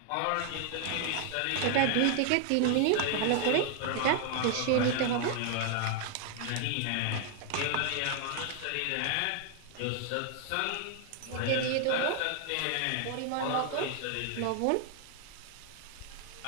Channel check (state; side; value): different; both; correlation 0.00